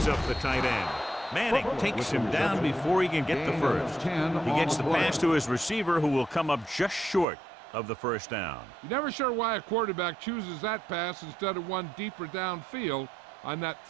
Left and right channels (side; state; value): left; drops out; at 7.2 s